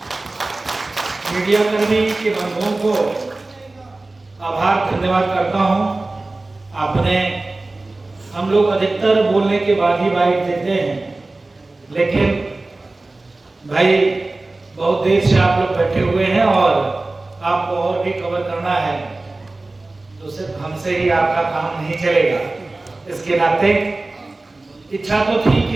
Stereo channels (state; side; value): quieter; left; 3.1 dB